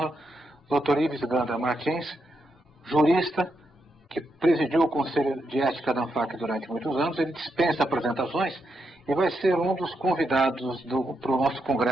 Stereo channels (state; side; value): normal; both; correlation 0.82